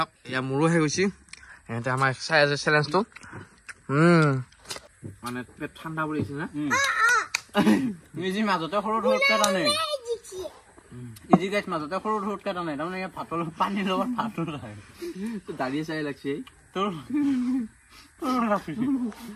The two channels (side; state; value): both; identical; correlation 1.00